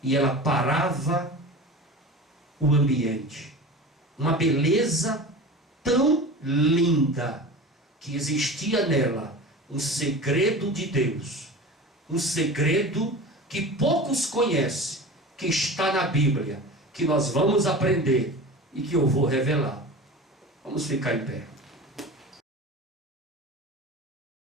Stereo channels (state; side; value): normal; both; correlation 0.33